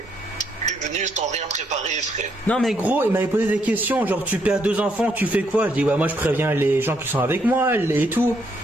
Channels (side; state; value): both; normal; correlation 0.74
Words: suis venu sans rien préparer, frère. Non mais gros, il m'avait posé des questions, genre tu perds 2 enfants, tu fais quoi? Je dis ouais, moi je préviens les gens qui sont avec moi et tout.